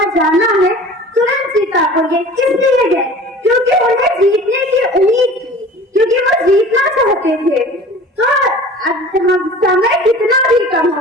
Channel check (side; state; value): both; normal; correlation 0.42